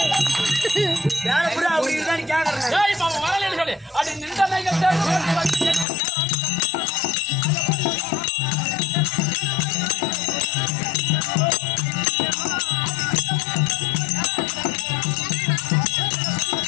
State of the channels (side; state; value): right; drops out; at 5.9 s